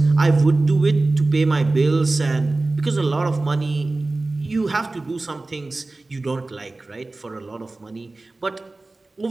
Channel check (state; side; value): quieter; left; 3.2 dB